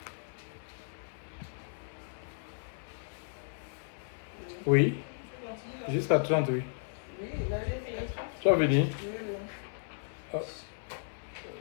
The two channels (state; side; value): silent; right; 55 dB below the other